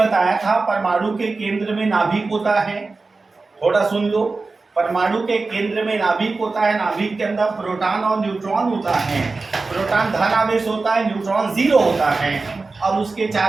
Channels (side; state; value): left; quieter; 3.8 dB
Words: था परमाणु के केंद्र में नाभिक होता है। थोड़ा सुन लो। परमाणु के केंद्र में नाभिक होता है, नाभिक के अंदर प्रोटॉन और न्यूट्रॉन होता है। प्रोटॉन धन आवेश होता है, न्यूट्रॉन जीरो होता है और उसके